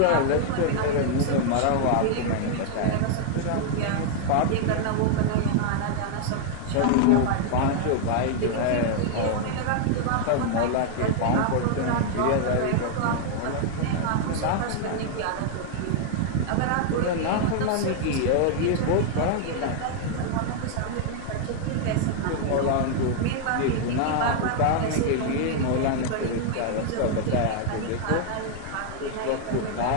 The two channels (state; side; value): different; both; correlation 0.00